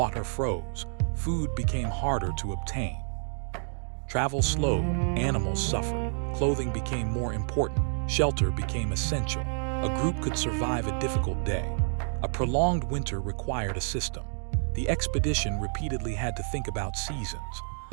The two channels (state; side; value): silent; left; 59 dB below the other